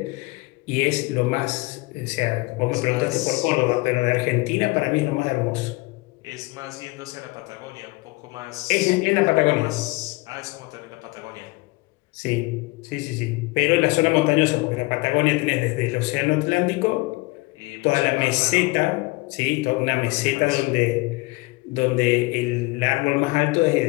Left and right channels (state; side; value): quieter; right; 23.9 dB